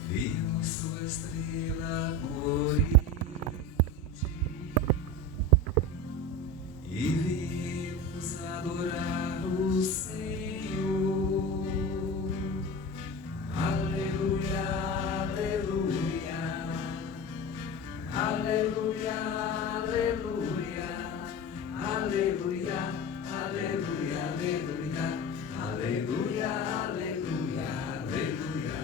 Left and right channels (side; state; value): both; normal; correlation 0.28